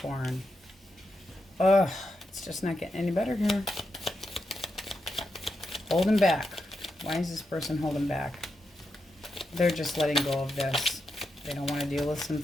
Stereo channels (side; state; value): both; normal; correlation 0.86